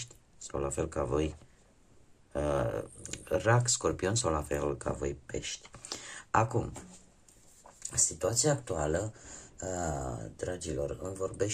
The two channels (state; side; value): identical; both; correlation 1.00